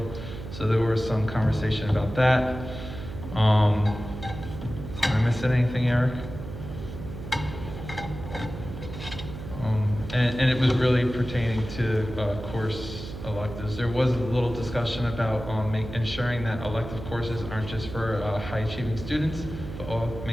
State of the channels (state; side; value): noise; right; hum, 10 dB below the sound